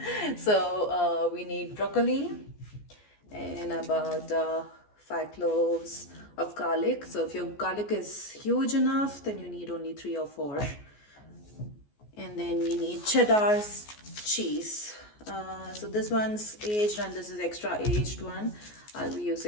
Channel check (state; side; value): late; right; 14 ms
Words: So we need broccoli and about 5 cloves of garlic. So if your garlic is huge enough, then you need only 3 or 4. And then we need cheddar cheese. So this one's aged and this is extra aged one. I'll be